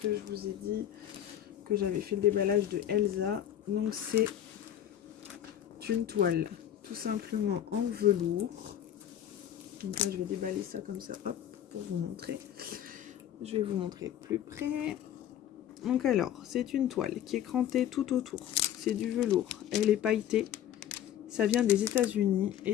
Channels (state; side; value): quieter; right; 10.7 dB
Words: je vous ai dit que j'avais fait le déballage de Elsa. Donc c'est une toile tout simplement en velours. Donc là je vais déballer ça comme ça, hop, pour vous montrer. Je vais vous montrer de plus près. Donc alors, c'est une toile qui est crantée tout autour. C'est du velours. Elle est pailletée. Ça vient des États-Unis